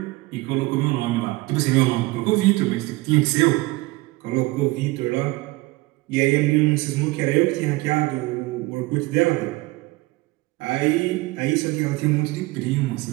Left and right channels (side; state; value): left; quieter; 21.5 dB